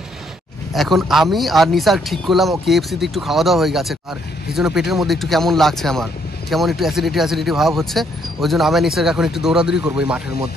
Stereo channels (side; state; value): both; normal; correlation 0.70